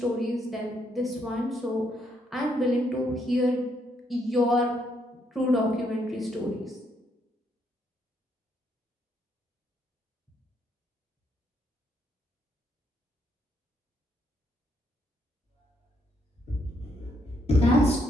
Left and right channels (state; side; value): normal; both; correlation 0.74